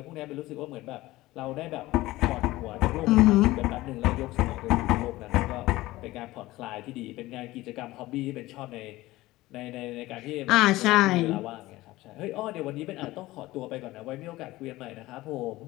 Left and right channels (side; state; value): right; quieter; 18.1 dB